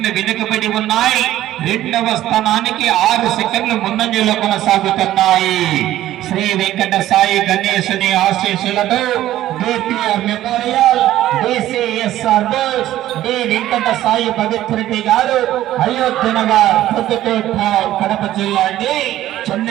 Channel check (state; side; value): quieter; left; 13.7 dB